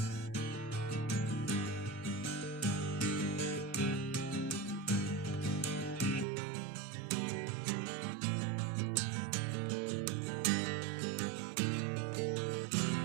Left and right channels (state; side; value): drops out; left; at 6.2 s